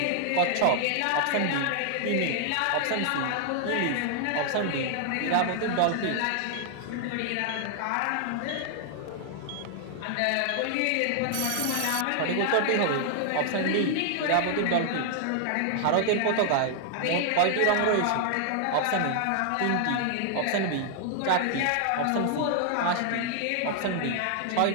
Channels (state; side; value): different; both; correlation 0.00